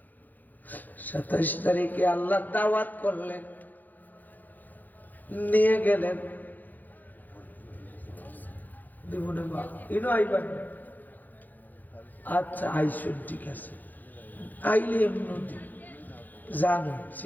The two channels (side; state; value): right; late; 0.084 ms